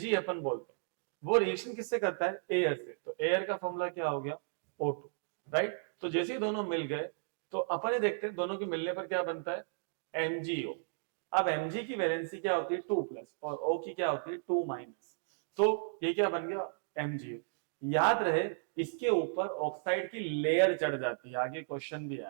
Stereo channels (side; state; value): left; silent; digital silence